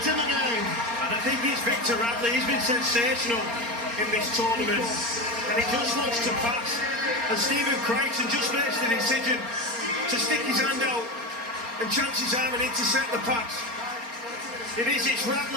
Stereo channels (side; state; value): left; late; 4.3 ms